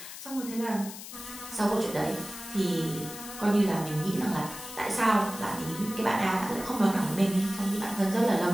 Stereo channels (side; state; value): left; noise; hiss, 12 dB below the sound